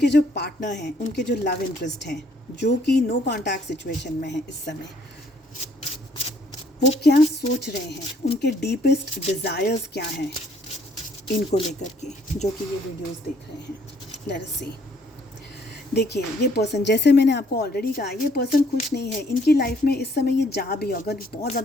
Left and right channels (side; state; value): both; normal; correlation 0.64